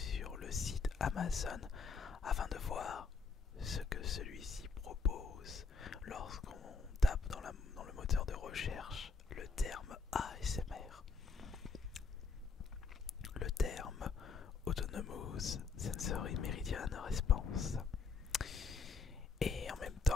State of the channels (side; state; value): right; quieter; 4.9 dB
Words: le site Amazon afin de voir ce que celui-ci propose lorsqu'on tape dans le moteur de recherche le terme ASMR. Le terme Autonomous Sensory Meridian Response. Et en même